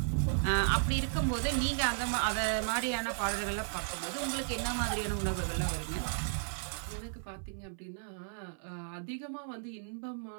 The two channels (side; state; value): left; silent; 55 dB below the other